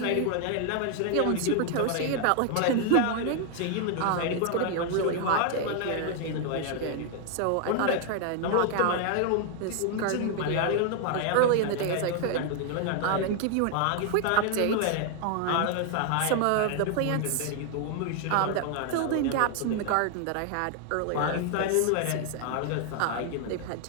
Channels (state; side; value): different; both; correlation 0.00